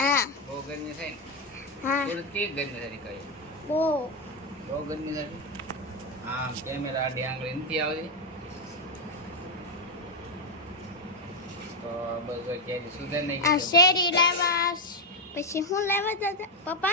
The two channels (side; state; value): both; normal; correlation 0.05